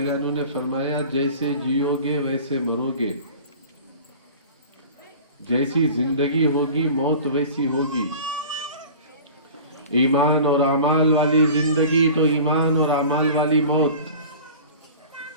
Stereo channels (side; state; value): both; inverted; correlation -0.40